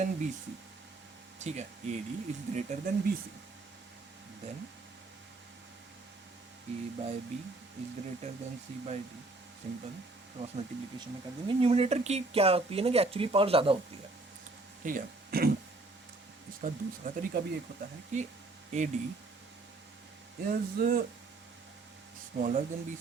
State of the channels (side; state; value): left; quieter; 3.2 dB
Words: B C, ठीक है, A D is greater than B C, then A by B is greater than C by D, simple cross multiplication में कर देंगे। न्यूमरेटर की क्या होती है ना कि एक्चुअली पावर ज़्यादा होती है, ठीक है। इसका दूसरा तरीका भी एक होता है कि A D is smaller than B